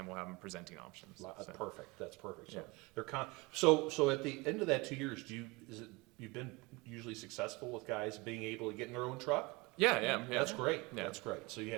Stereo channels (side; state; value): left; quieter; 25.0 dB